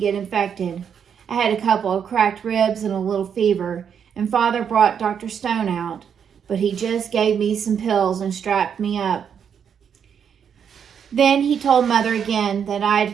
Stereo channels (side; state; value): left; quieter; 7.7 dB